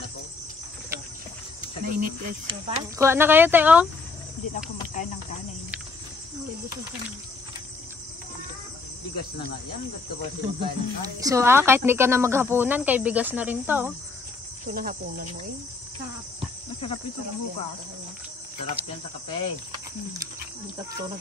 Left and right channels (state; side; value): quieter; right; 4.0 dB